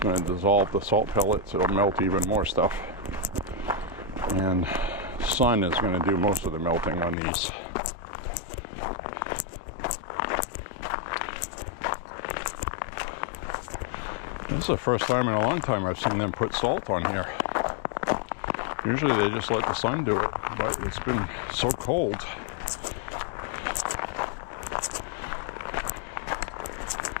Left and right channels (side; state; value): right; drops out; at 7.2 s